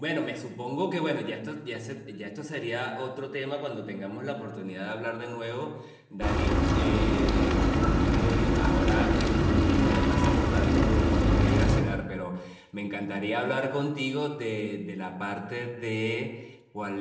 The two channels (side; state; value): both; identical; correlation 1.00